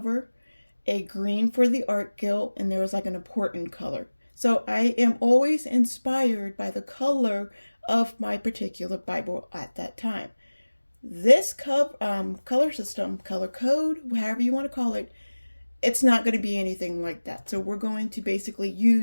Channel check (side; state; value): both; inverted; correlation -1.00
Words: a green for the art guild, and there was like an important color. So I am always inspired by the color of my particular Bible at that time. This color system, color code, however you want to call it, it's not going to be anything like that. So we're going to basically